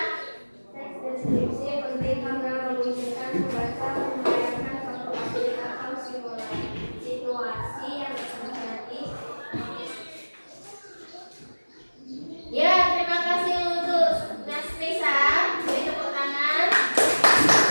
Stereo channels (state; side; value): inverted; both; correlation -1.00